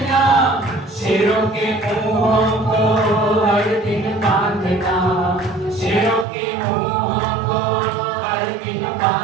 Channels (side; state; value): left; drops out; at 6.2 s